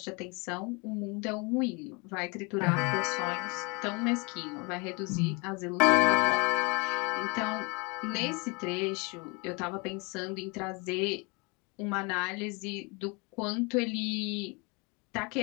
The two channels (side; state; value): right; quieter; 30.0 dB